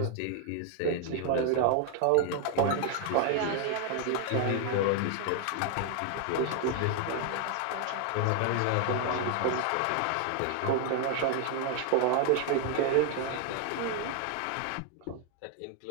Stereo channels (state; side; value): different; both; correlation 0.00